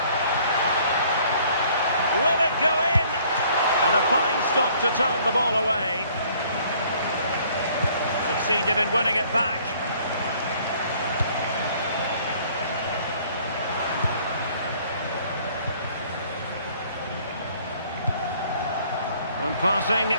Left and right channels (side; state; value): both; inverted; correlation -0.59